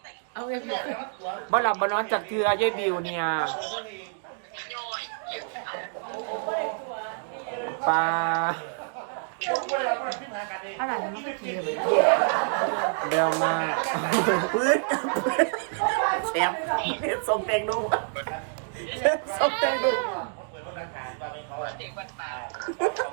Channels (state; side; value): silent; left; digital silence